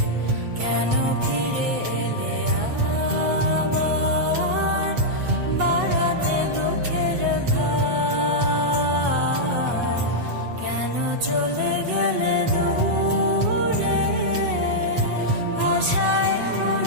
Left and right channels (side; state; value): left; late; 7.9 ms